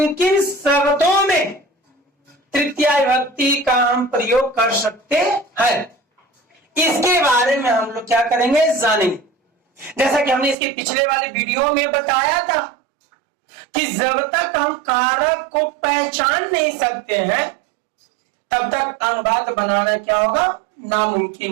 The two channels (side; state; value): left; drops out; at 10.6 s